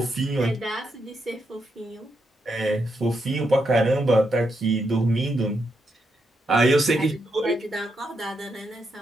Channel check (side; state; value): both; normal; correlation 0.82